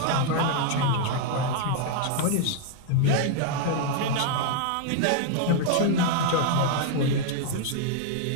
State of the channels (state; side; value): different; both; correlation 0.00